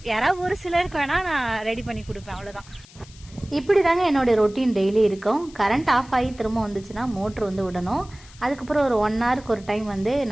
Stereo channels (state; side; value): noise; left; hiss, 23 dB below the sound